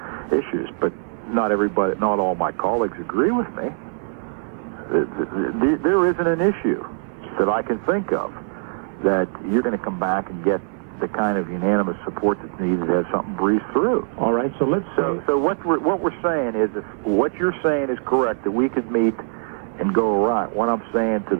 issues, but not everybody, not all my colleagues agree with me. There isn't an issue that I can think of that you're going to come back and get the kind of unanimous support that's needed to have something breeze through. All right, so let's say... So what we're saying is, if what you're saying is correct, that we could meet and go around. What I'm saying to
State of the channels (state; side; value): silent; left; 60 dB below the other